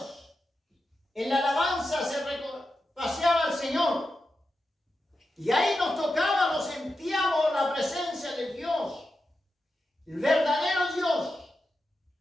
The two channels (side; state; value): both; normal; correlation 0.89